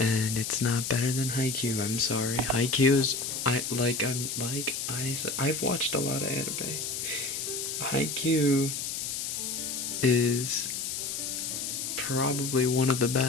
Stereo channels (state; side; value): noise; left; hiss, 3 dB below the sound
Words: it's not better than Haikyuu. I'm sorry. Haikyuu is I've watched a lot of anime. Haikyuu is probably one of the